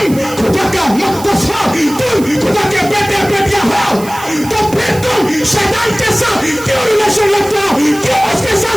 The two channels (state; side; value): noise; right; hiss, 16 dB below the sound